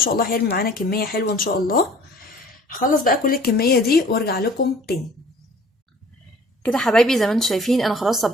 الله هيرمي معانا كميه حلوه ان شاء الله. هخلص بقى كل الكميه دي وارجع لكم تاني. كده حبايبي زي ما انتم شايفين انا خلاص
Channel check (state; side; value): normal; both; correlation 0.51